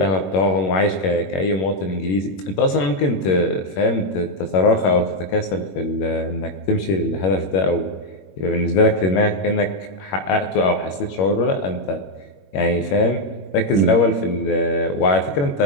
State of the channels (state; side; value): late; right; 21 ms